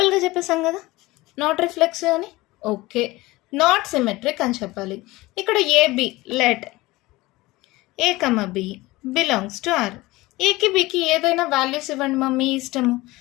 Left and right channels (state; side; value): quieter; right; 20.1 dB